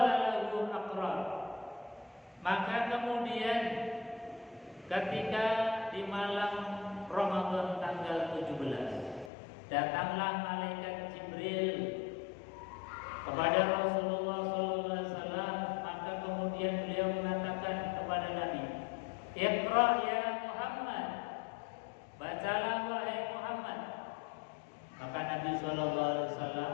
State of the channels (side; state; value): right; drops out; at 9.3 s